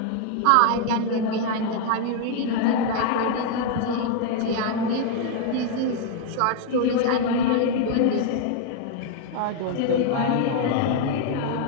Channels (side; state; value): both; different; correlation 0.00